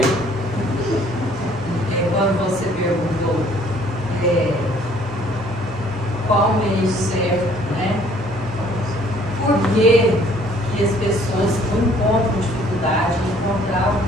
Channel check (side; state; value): both; normal; correlation 0.59